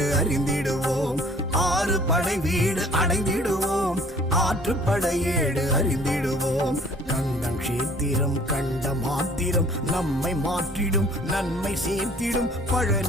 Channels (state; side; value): normal; both; correlation 0.54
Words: அறிந்திடுவோம் ஆறு படை வீடு அடைந்திடுவோம் ஆற்றுப்படையேடு அறிந்திடுவோம் கண்டம் கஷேத்திரம் கண்ட மாத்திரம் நம்மை மாற்றிடும் நன்மை சேர்த்திடும்